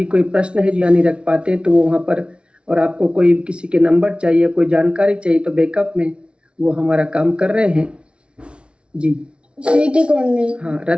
कोई प्रश्न है जो नहीं रख पाते तो वो वहाँ पर, और आपको कोई किसी के नंबर चाहिए, कोई जानकारी चाहिए तो बैकअप में वो हमारा काम कर रहे हैं। जी हाँ,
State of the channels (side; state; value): left; late; 0.058 ms